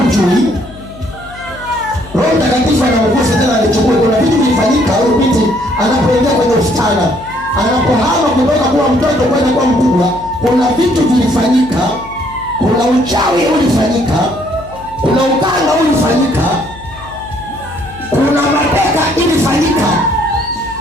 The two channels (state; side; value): noise; left; hum, 18 dB below the sound